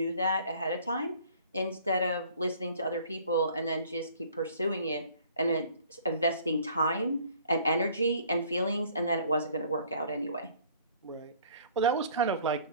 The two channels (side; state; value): both; inverted; correlation -0.54